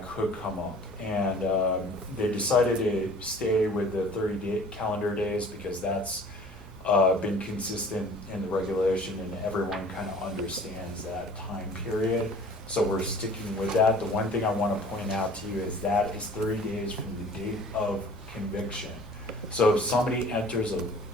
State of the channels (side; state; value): both; normal; correlation 0.48